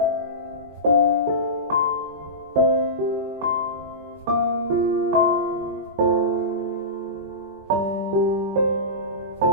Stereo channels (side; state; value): both; normal; correlation -0.18